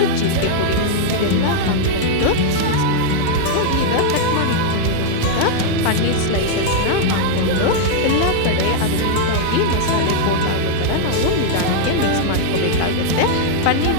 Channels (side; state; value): both; different; correlation -0.01